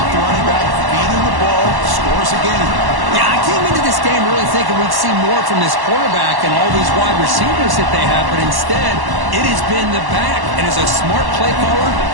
the running back, feeding the ball, scores again. Yeah, I came into this game really thinking we'd see more from this quarterback and all these wide receivers that they have, but instead, it has been the back. And as a smart play caller,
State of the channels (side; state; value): left; late; 1.1 ms